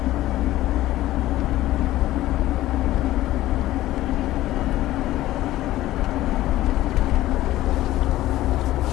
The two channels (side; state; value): right; quieter; 15.4 dB